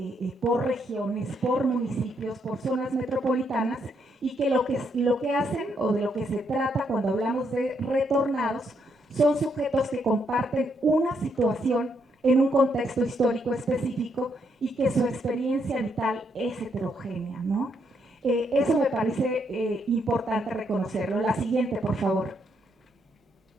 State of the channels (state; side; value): normal; both; correlation 0.75